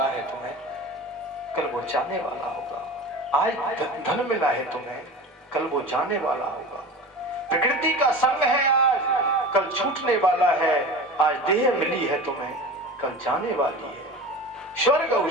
है तुम्हें, कल वो जाने वाला होगा। आज धन मिला है तुम्हें, कल वो जाने वाला होगा। प्रकृति का संग है आज, कल छूटने वाला है। आज देह मिली है तुम्हें, कल जाने वाली है। स्वर्ग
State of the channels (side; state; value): both; normal; correlation 0.34